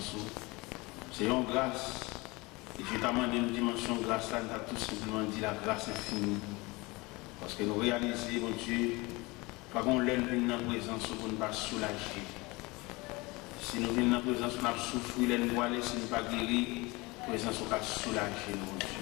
C'est une grâce. Et je t'amène une dimension de grâce là, nous avons tout simplement dit la grâce infinie. Parce que nous réalisons, mon Dieu, pas qu'on l'aime dans la présence pour ne pas soulager. Si nous venons dans la présence, on a souffert, nous voiler, si nous ne pas guérir, la présence on va soulager, mon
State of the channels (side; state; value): right; quieter; 24.0 dB